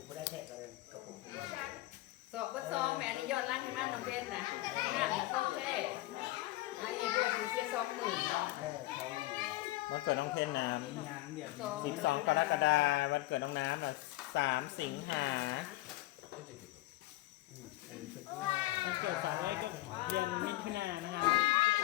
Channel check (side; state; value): right; quieter; 17.8 dB